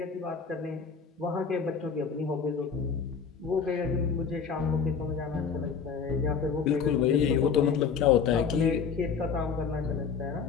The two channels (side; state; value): right; quieter; 6.1 dB